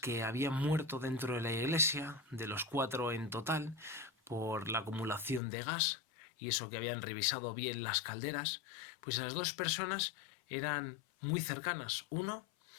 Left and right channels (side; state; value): right; drops out; at 5.4 s